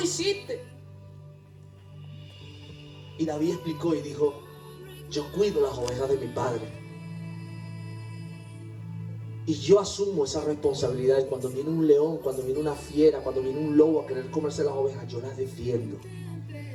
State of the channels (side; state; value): both; identical; correlation 1.00